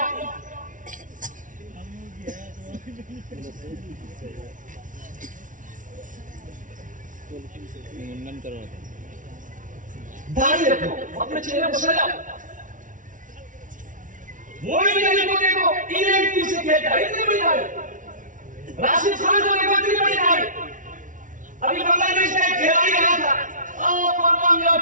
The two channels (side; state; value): left; late; 0.38 ms